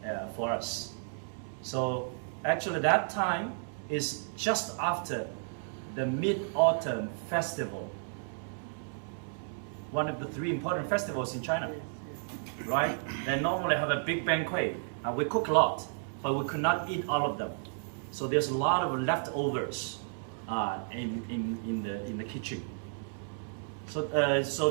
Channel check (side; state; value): left; silent; digital silence